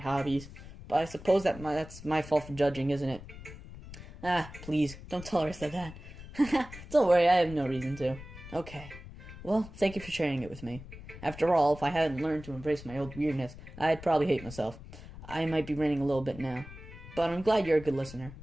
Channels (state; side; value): noise; left; rumble, 15 dB below the sound